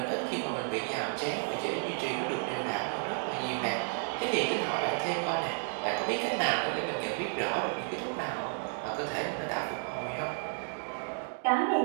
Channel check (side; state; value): left; silent; 56 dB below the other